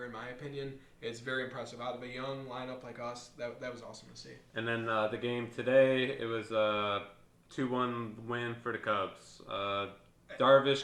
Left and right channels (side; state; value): both; identical; correlation 1.00